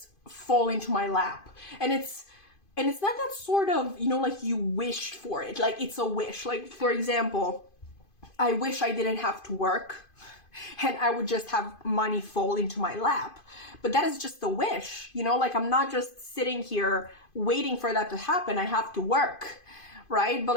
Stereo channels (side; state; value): right; late; 2.5 ms